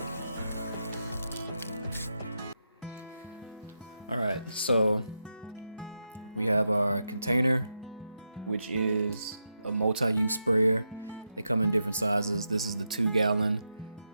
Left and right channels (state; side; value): inverted; both; correlation -0.86